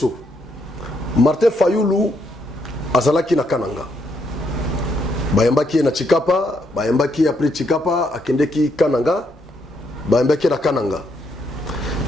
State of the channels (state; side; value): normal; both; correlation 0.75